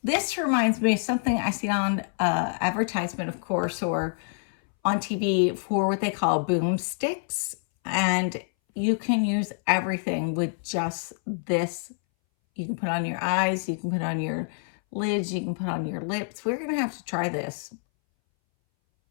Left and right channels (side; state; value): right; silent; 60 dB below the other